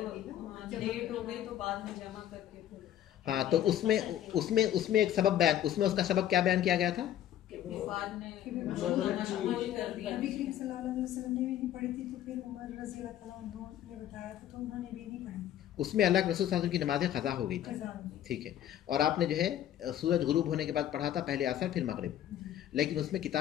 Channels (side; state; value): right; quieter; 11.4 dB